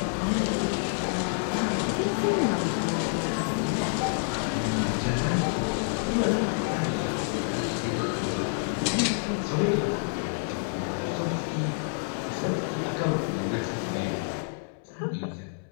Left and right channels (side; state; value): right; silent; digital silence